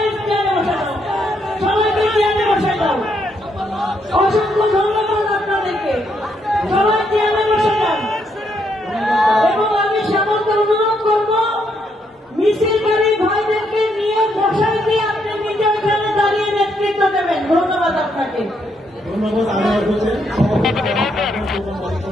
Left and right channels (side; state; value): both; normal; correlation 0.75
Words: চেয়ারে বসে দাও, সবাইকে চেয়ারে বসে দাও। অসংখ্য ধন্যবাদ আপনাদেরকে, সবাই চেয়ারে বসে যান। এবং আমি সকলকে অনুরোধ করব, মিছিলকারী ভাইদেরকে নিয়ে বসাই দিয়ে আপনি নিজে ওখানে দাঁড়িয়ে নেতৃত্ব দেবেন। ধন্যবাদ আপনাকে। ধন্যবাদ আনোয়ার হোসেন,